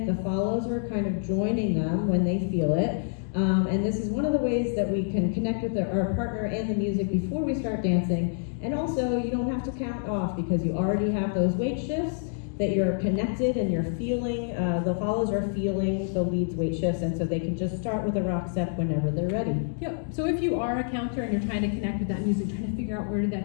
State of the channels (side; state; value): right; silent; digital silence